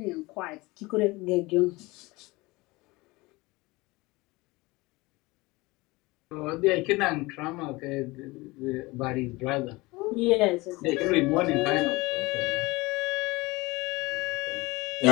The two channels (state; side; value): quieter; right; 22.5 dB